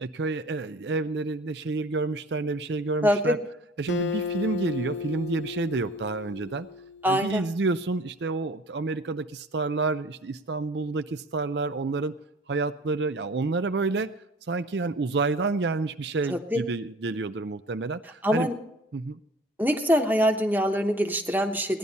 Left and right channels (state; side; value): normal; both; correlation 0.47